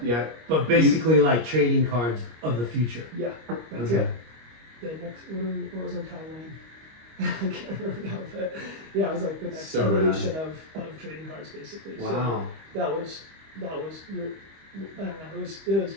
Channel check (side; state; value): left; late; 25 ms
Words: yet But basically like trading cards of the future. yeah, that's Okay. it. The next what was our timeline? I can't remember now, but yeah, it was like the next So rad. evolution of trading cards basically. So Wow. that was your I don't know,